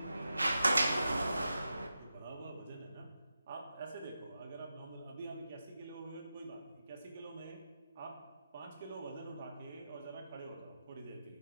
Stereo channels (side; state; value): both; inverted; correlation -0.90